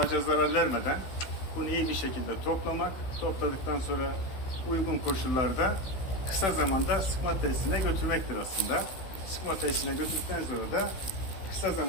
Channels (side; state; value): right; late; 16 ms